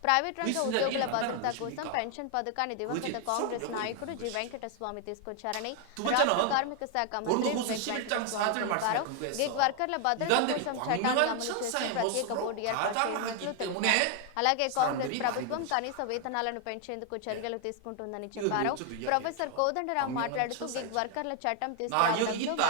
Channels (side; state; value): both; different; correlation 0.00